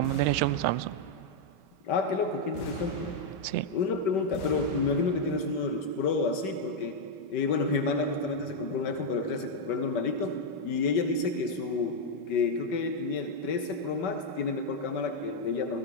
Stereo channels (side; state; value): right; late; 5.2 ms